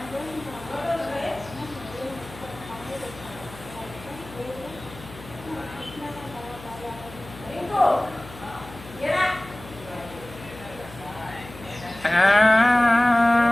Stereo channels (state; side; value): noise; left; hum, 17 dB below the sound